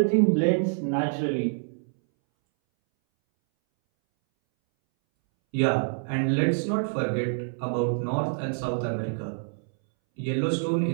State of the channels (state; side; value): silent; left; 61 dB below the other